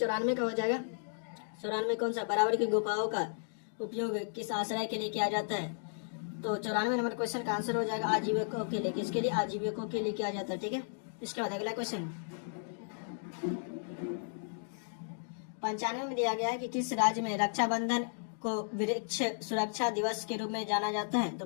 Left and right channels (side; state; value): right; silent; digital silence